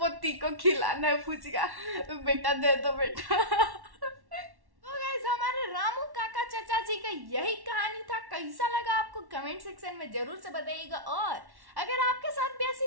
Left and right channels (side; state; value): left; late; 1.1 ms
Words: को खिलाना है फुचका, बेटा दे दो बेटा। हमारे रामू काका चाचा जी का यही कहानी था। कैसा लगा आपको कमेंट सेक्शन में जरूर से बताइएगा। और अगर आपके साथ भी